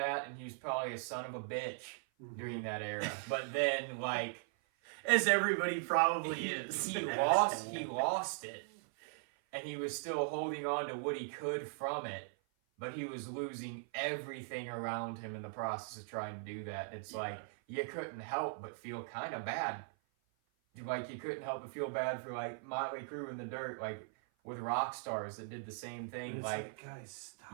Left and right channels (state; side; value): silent; left; 52 dB below the other